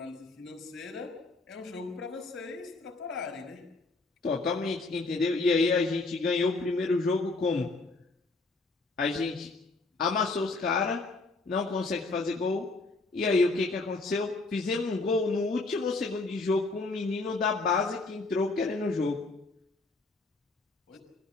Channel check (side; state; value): right; quieter; 3.5 dB